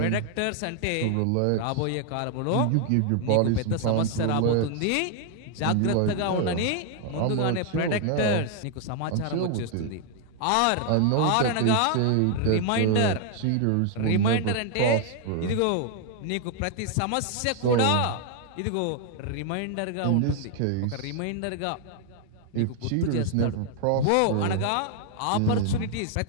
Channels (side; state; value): both; different; correlation 0.00